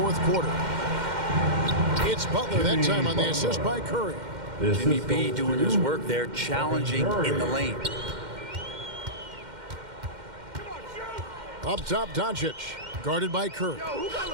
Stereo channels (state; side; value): late; left; 2.1 ms